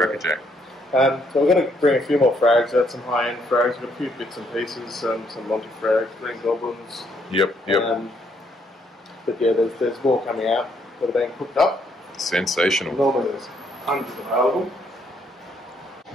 So we're going to bring a few more frags out, some high-end frags. We've got a few bits and pieces, some Monty frags, green goblins. Yep. But yeah, there's more coming out that are being cooked up. Sensational. Normally there's hundreds available.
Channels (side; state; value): both; normal; correlation 0.71